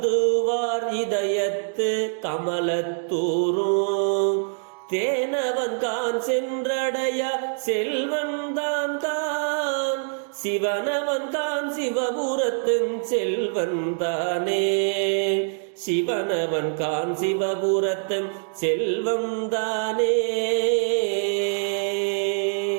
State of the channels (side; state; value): left; silent; digital silence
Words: இதயத்து கமலத்தூரும் தேனவன் கான் சென்றடைய செல்வன்தான் கான் சிவனவன் கான் சிவபுரத்தின் செல்வந்தானே சிவனவன் கான் சிவபுரத்தின் செல்வந்தானே.